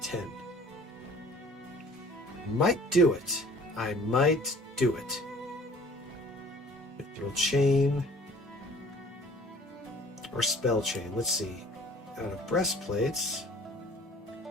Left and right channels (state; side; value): normal; both; correlation 0.51